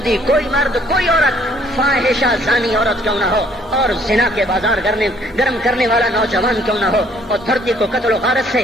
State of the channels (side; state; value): both; normal; correlation 0.62